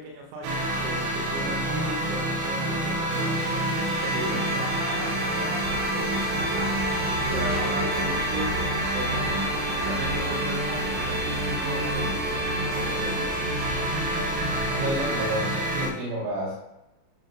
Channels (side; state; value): left; late; 37 ms